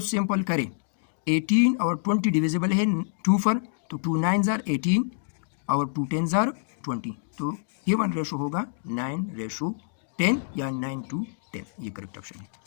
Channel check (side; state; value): right; silent; digital silence